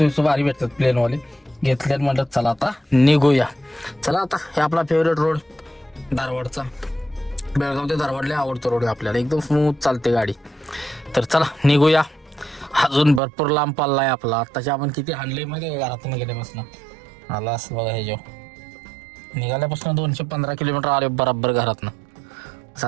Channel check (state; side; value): drops out; left; at 13.2 s